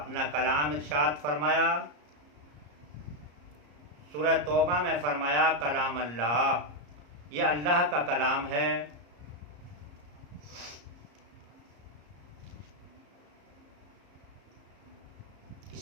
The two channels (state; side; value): late; left; 34 ms